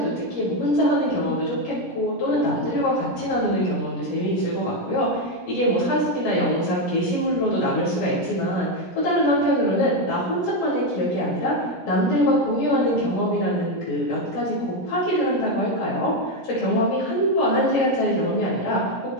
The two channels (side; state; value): right; late; 17 ms